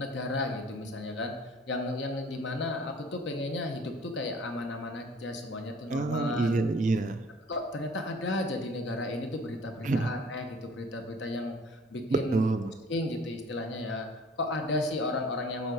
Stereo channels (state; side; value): normal; both; correlation 0.51